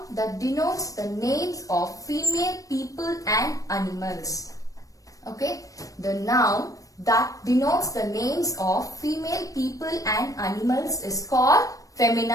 that denotes the names of female people and animals. Okay. The noun that denotes the names of female people and animals is called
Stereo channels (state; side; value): late; right; 0.16 ms